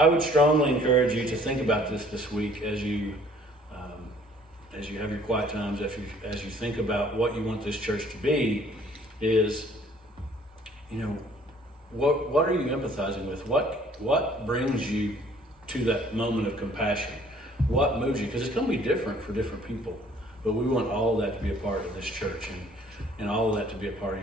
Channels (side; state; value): both; normal; correlation 0.57